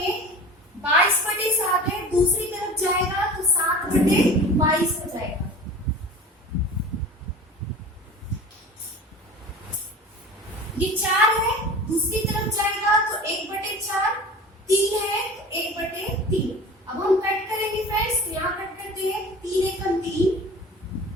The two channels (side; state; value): both; normal; correlation 0.38